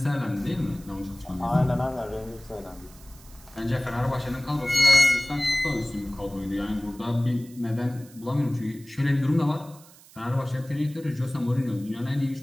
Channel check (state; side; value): noise; right; hiss, 23 dB below the sound